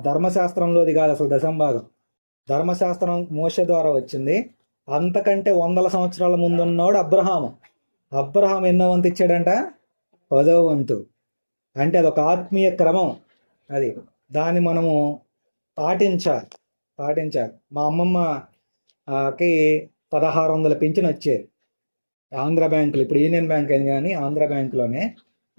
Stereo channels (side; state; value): both; inverted; correlation -1.00